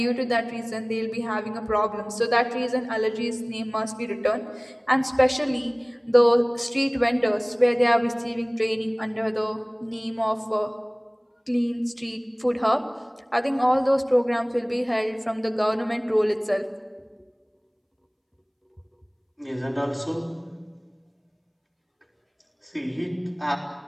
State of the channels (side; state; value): both; identical; correlation 1.00